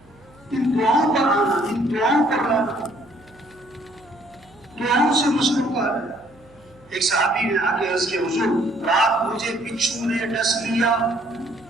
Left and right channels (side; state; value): right; noise; hum, 28 dB below the sound